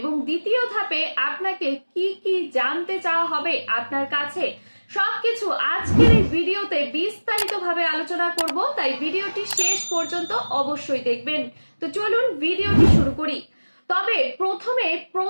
দ্বিতীয় ধাপে আপনাকে কি কি জানতে চাওয়া হবে আপনার কাছে, সবকিছু আজকের এই ভিডিওতে বিস্তারিতভাবে আলোচনা করব। তাই ভিডিওটি শেষ পর্যন্ত অবশ্যই দেখবেন। তো চলুন ভিডিওটি শুরু করি। তবে প্রথমে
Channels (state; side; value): inverted; both; correlation -1.00